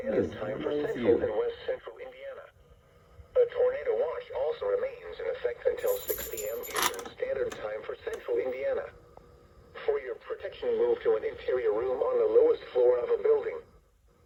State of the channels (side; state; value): both; identical; correlation 1.00